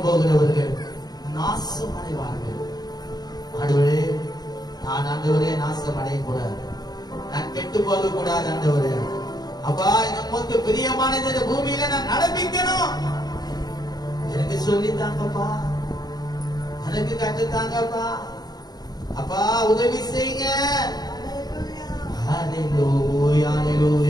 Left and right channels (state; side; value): late; right; 0.19 ms